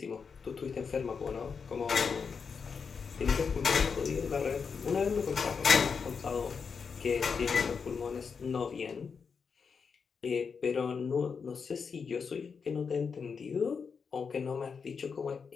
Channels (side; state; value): right; quieter; 5.8 dB